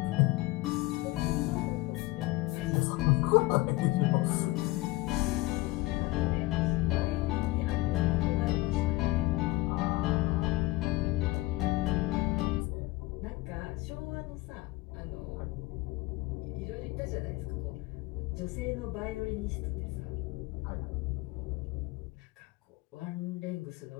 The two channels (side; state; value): right; quieter; 19.8 dB